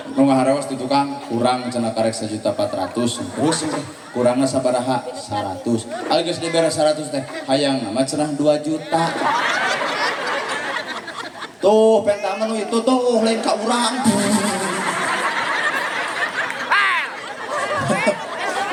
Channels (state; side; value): identical; both; correlation 1.00